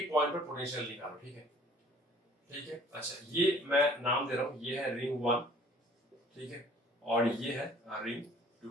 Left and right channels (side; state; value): both; normal; correlation 0.54